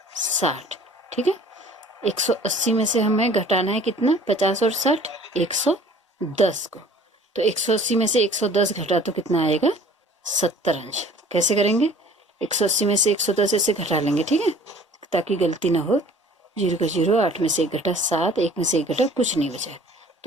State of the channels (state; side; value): normal; both; correlation 0.50